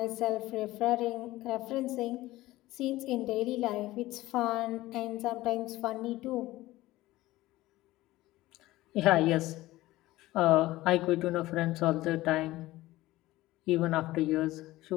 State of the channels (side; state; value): right; quieter; 17.4 dB